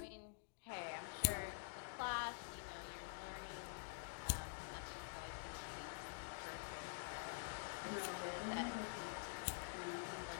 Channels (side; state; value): right; silent; digital silence